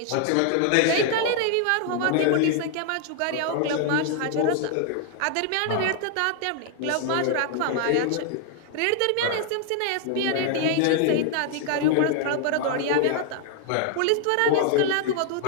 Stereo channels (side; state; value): both; different; correlation 0.00